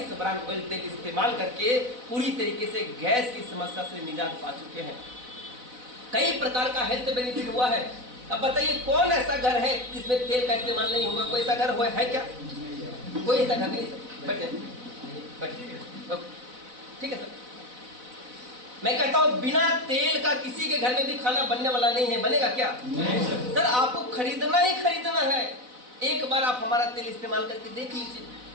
bran oil तेल इस्तेमाल करके पूरी तरीके से गैस की समस्या से निजात पा चुके हैं। कई प्रकार का हेल्थ बेनिफिट हुआ है। अब बताइए कौन ऐसा घर है जिसमें तेल का इस्तेमाल नहीं होगा? कोई ऐसा घर हुआ है क्या? कोई ऐसा घर नहीं सर। बैठिए, ठीक है सर। मैं कहता हूं बिना तेल का किसी के घर में भी खाना बनने वाला नहीं है। बनेगा क्या? नहीं सर। आपको खरीदना ही खरीदना है। एक बार आप हमारा तेल इस्तेमाल करके देख लीजिए,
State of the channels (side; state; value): left; late; 4.0 ms